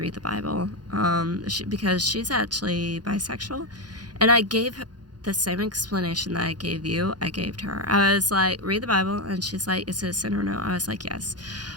read the Bible, because she's actually bisexual, and I gave her the same explanation that I gave you, I gave to her. I was like, read the Bible, and she's like, is it a sin or no? I was like, yes.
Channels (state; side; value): late; left; 0.69 ms